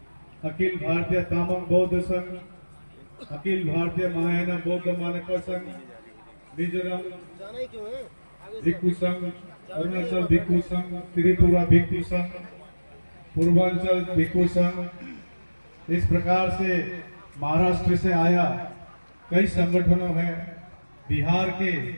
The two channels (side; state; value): both; inverted; correlation -1.00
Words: अखिल भारतीय तामांग बौद्ध संघ, अखिल भारतीय महायान बौद्ध मानक संघ, मिजोरम भिक्षु संघ, अरुणाचल भिक्षु संघ, त्रिपुरा भिक्षु संघ, पूर्वांचल भिक्षु संघ, इस प्रकार से महाराष्ट्र से आया कई संगठनों हैं, बिहार के